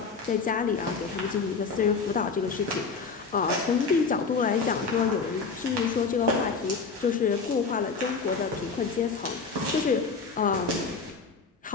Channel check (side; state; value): right; quieter; 4.9 dB